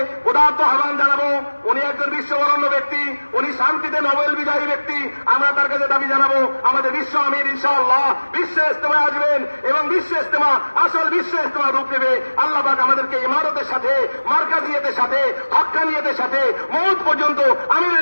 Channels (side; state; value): both; inverted; correlation -1.00